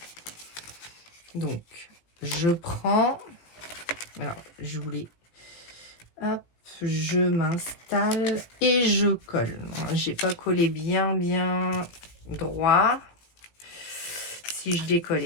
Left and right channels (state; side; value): late; right; 18 ms